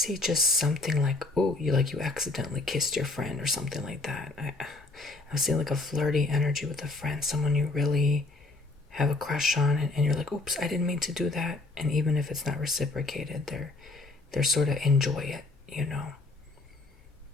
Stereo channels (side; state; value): right; quieter; 3.2 dB